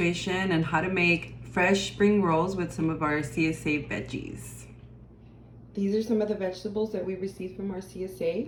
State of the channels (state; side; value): identical; both; correlation 1.00